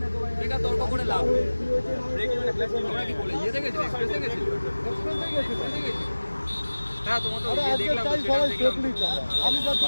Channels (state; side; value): inverted; both; correlation -1.00